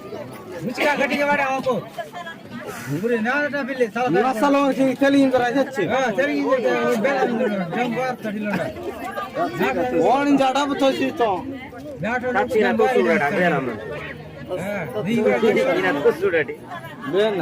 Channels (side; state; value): both; identical; correlation 1.00